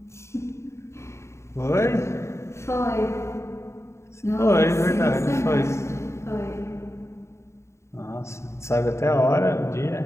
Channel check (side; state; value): right; late; 0.13 ms